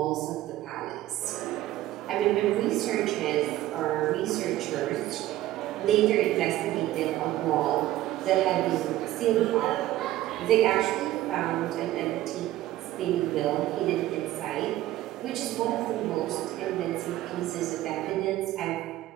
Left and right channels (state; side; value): quieter; left; 15.0 dB